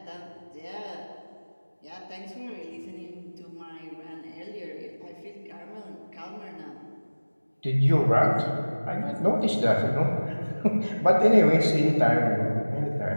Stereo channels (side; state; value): both; inverted; correlation -1.00